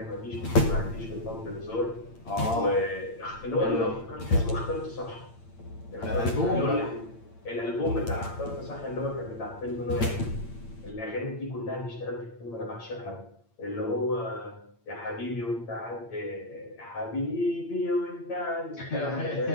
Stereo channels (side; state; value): right; late; 8.8 ms